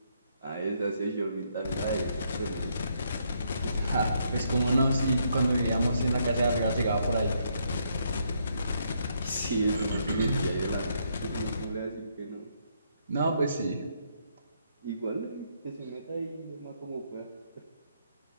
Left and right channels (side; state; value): both; inverted; correlation -0.74